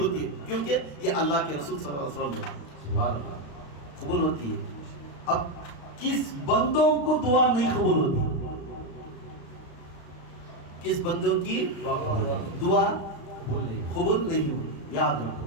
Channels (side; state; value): right; late; 35 ms